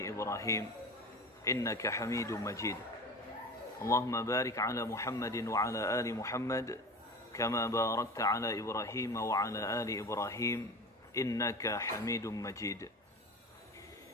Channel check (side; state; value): both; normal; correlation 0.33